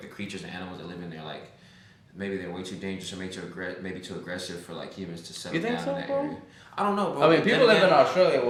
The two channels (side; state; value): both; identical; correlation 1.00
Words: the creatures and animals that live in there, like maybe they're way too dangerous or maybe too aggressive for like humans to settle down in that area. I don't know, bro. I mean, people live in Australia